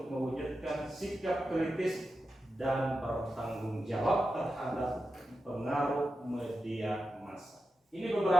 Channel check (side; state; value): both; normal; correlation 0.90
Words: mewujudkan sikap kritis dan bertanggung jawab terhadap pengaruh media massa. Ini